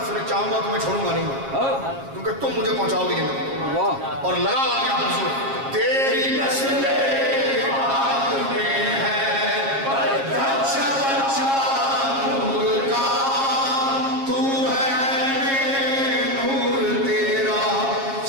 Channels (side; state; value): left; late; 7.4 ms